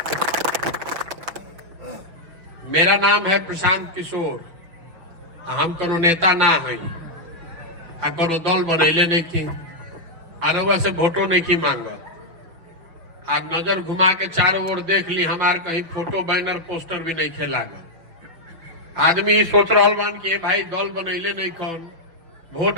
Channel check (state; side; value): late; left; 5.8 ms